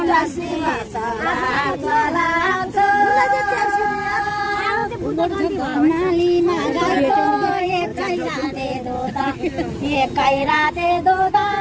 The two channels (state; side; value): identical; both; correlation 1.00